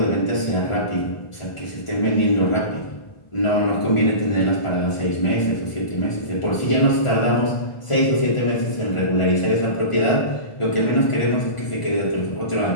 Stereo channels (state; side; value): late; right; 1.4 ms